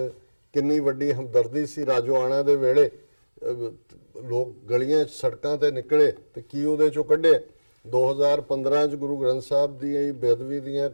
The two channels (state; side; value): inverted; both; correlation -1.00